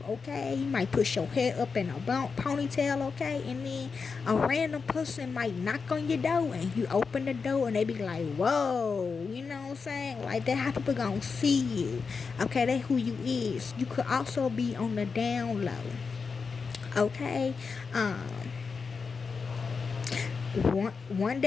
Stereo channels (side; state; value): right; quieter; 5.1 dB